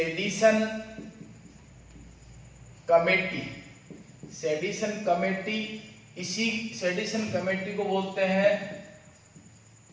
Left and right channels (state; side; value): identical; both; correlation 1.00